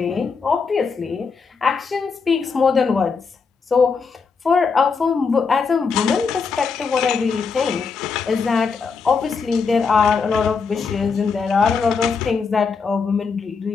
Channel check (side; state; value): right; quieter; 5.2 dB